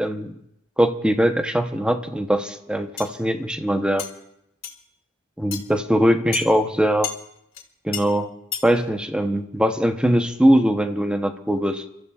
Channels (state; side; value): normal; both; correlation 0.89